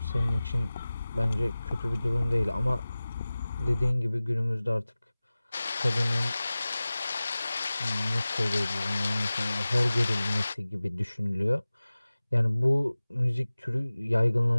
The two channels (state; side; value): inverted; both; correlation -0.98